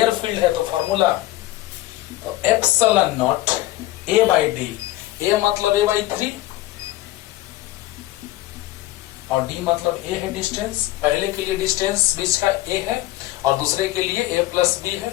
फील्ड है, तो फॉर्मूला तो epsilon naught A by D. A मतलब ए बाई 3 और डी मतलब ए है डिस्टेंस। पहले के लिए डिस्टेंस बीच का ए है और दूसरे के लिए ए प्लस बी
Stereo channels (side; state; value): right; quieter; 16.5 dB